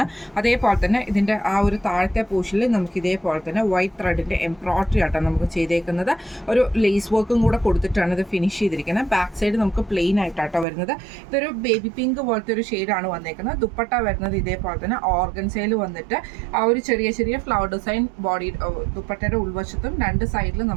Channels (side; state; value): left; drops out; at 10.7 s